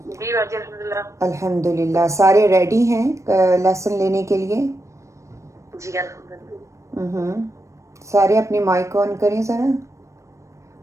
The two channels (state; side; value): late; left; 0.15 ms